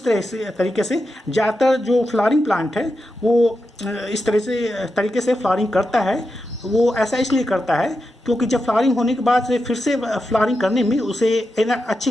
तरह से तरीके से ज़्यादातर जो फ्लावरिंग प्लांट है वो इस तरह से तरीके से फ्लावरिंग करता है। वो ऐसा इसलिए करता है क्योंकि जब फ्लावरिंग होने के बाद से फिर से फ्लावरिंग करने में उसे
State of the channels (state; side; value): normal; both; correlation 0.88